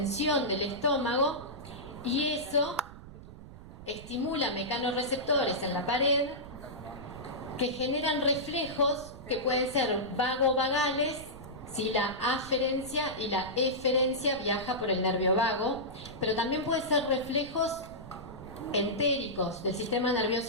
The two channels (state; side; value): noise; right; rumble, 15 dB below the sound